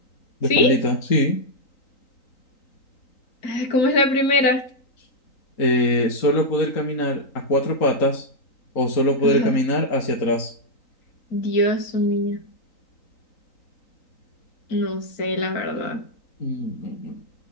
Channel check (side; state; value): right; late; 3.9 ms